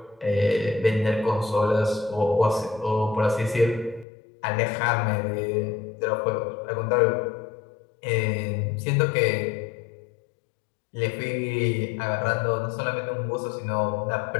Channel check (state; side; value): drops out; right; at 4.0 s